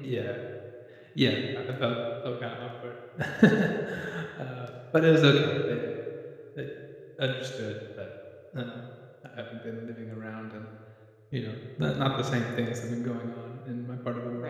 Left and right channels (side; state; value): both; identical; correlation 1.00